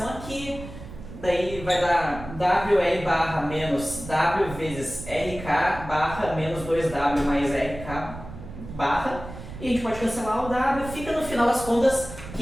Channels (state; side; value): noise; right; rumble, 13 dB below the sound